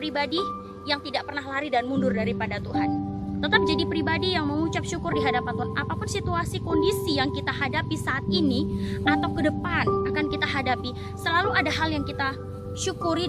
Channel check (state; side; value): identical; both; correlation 1.00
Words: yang tidak pernah lari dan mundur daripada Tuhan. Tetap jadi pribadi yang mengucap syukur di hadapan Tuhan. Apapun situasi, kondisi yang kita hadapi saat ini atau ke depan akan kita hadapi, selalu ada hal yang kita syukuri